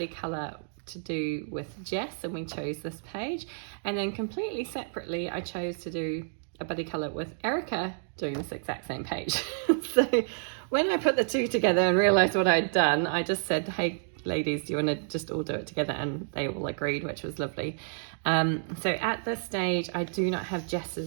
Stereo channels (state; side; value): silent; left; digital silence